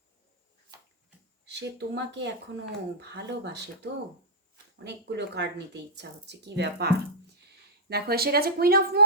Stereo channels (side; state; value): both; normal; correlation -0.09